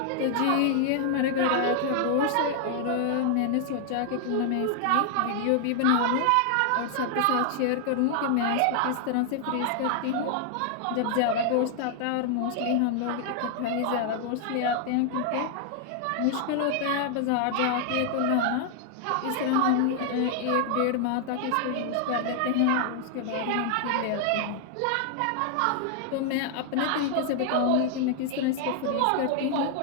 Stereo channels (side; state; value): both; different; correlation 0.00